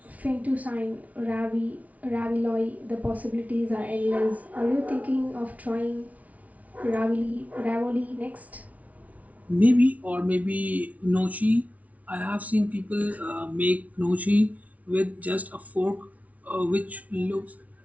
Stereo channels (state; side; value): late; left; 0.069 ms